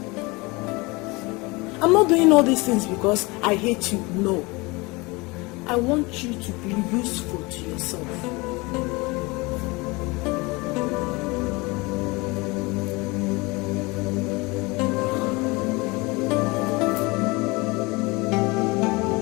I'm not doing all these things because I hate you, no. I want you to be useful to yourself.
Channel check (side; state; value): right; quieter; 25.0 dB